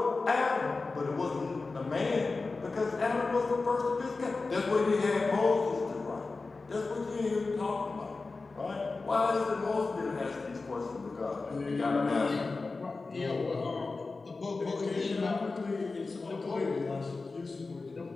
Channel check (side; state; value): right; quieter; 3.8 dB